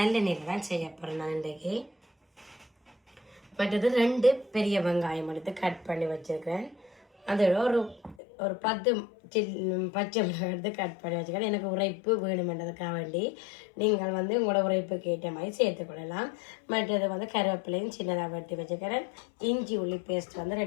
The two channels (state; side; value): drops out; right; at 8.2 s